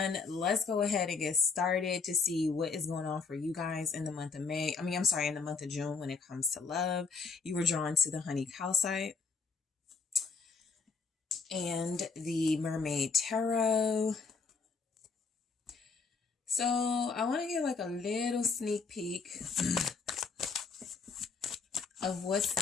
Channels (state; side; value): quieter; right; 4.8 dB